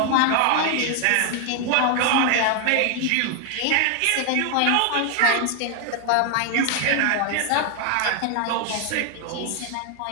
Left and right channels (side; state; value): both; different; correlation 0.00